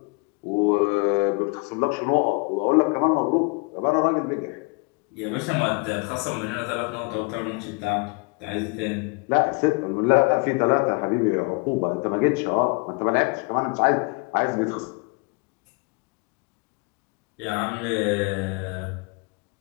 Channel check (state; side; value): quieter; right; 30.3 dB